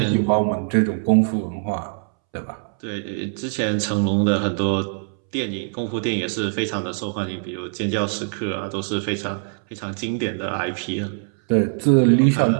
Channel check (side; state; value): left; silent; 64 dB below the other